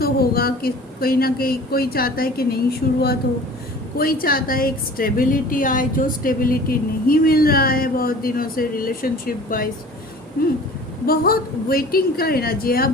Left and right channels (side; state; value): both; normal; correlation 0.44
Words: होगा कि कहीं ना कहीं कोई चाहता है कि नई शुरुआत हो, कोई चाहता है एक स्टेबिलिटी आए, जो स्टेबिलिटी नहीं मिल रहा है बहुत दिनों से रिलेशनशिप वाइज। बहुत वेटिंग का एनर्जी है, आप